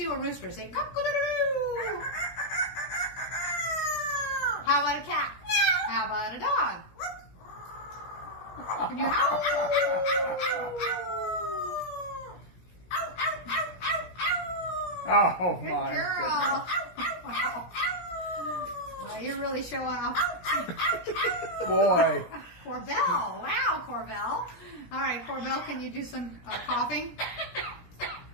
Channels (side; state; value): right; late; 17 ms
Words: a rooster. Say cock-a-doodle-doo. How about a cat? How about a dog? Can you howl? Oh, Good my girl. Well, you're really showing off. goodness. Boy. Corbell. Wow, Corbell. All right, Corbell, can you do some coughing?